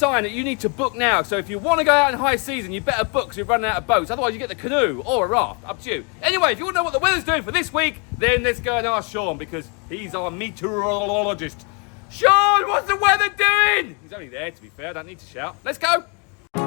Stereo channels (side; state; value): right; quieter; 35.0 dB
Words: that you need to book now. So if you want to go out in high season, you better book because we're running out of boats. Otherwise, you get the canoe or a raft. Up to you. Anyway, if you want to know what the weather's doing for this week, then let's go and ask Shaun because he's our meteorologist. Shaun, what's the weather doing? He's only there, to be fair. I don't need to shout. Let's go.